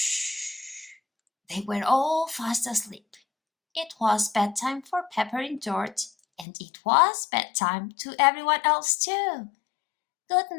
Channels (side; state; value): right; drops out; at 6.5 s